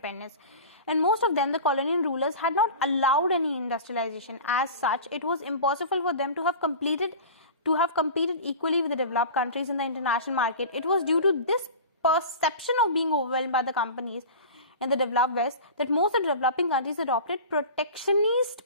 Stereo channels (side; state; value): both; inverted; correlation -0.34